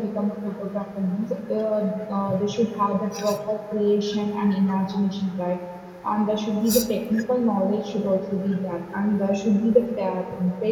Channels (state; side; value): identical; both; correlation 1.00